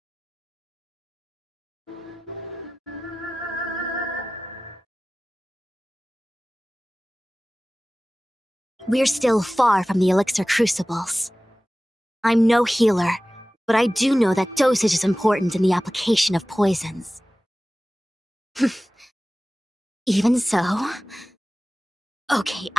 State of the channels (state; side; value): normal; both; correlation 0.97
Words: We're still far from the elixir crucibles. I'm no healer, but I do know that dosage is important in the application of poisons. Even so... Okay,